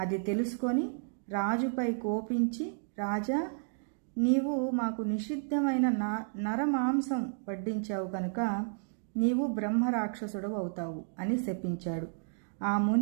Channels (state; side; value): silent; left; digital silence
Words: తెలుసుకొని రాజుపై కోపించి, రాజా, నీవు మాకు నిషిద్ధమైన నరమాంసం వడ్డించావు కనుక నీవు బ్రహ్మరాక్షసుడు అవుతావు అని శపించాడు. ఆ